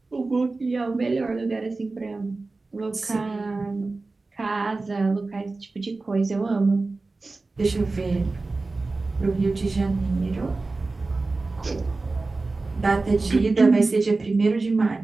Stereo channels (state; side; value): quieter; left; 3.5 dB